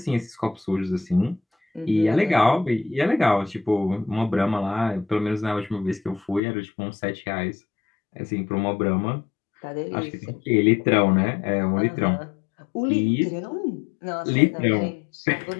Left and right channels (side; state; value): right; drops out; at 6.4 s